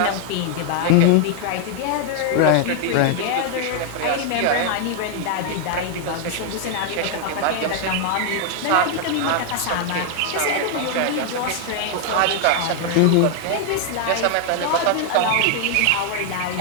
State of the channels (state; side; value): different; both; correlation 0.00